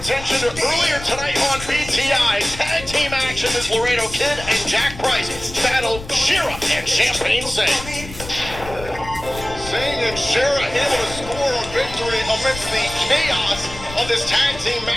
to earlier tonight on BTI. Tag team action as Laredo Kid and Jack Price battled Shera and Champagne Singh. Singh and Shera able to score a victory amidst the chaos of this tag team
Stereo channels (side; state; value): left; noise; rumble, 13 dB below the sound